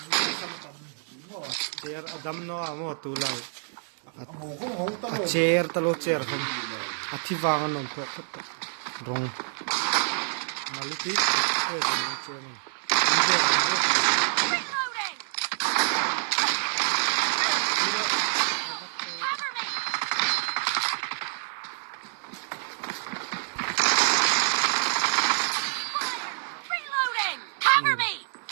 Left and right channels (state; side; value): silent; left; 60 dB below the other